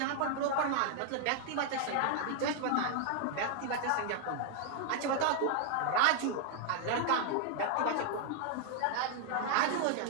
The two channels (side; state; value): both; different; correlation 0.00